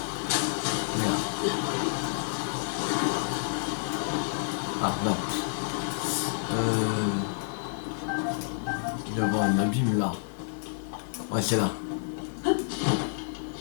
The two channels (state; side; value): silent; right; digital silence